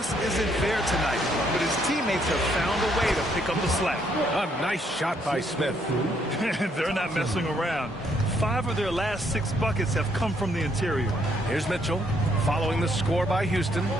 isn't there tonight, but his teammates have found a way to pick up the slack. A nice shot by Smith. They're not messing around. 5 of their last 6 buckets have come from the interior. Here's Mitchell, following the score by Houston.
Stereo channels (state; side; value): normal; both; correlation 0.70